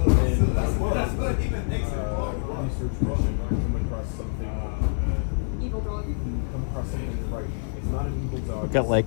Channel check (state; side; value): silent; right; digital silence